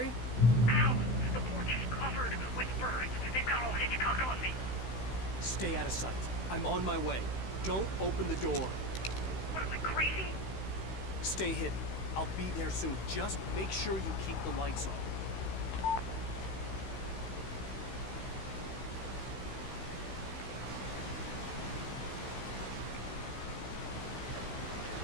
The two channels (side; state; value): right; late; 16 ms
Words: Ow! The porch is covered with birds. They've got all Hitchcock on me. Stay out of sight. I'm on my way. Don't open the door. What am I, crazy? Stay hidden. I'll be there soon. Just make sure you keep the lights on.